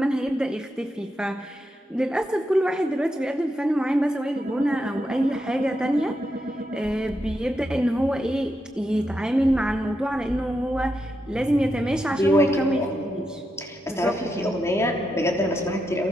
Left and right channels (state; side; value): normal; both; correlation 0.85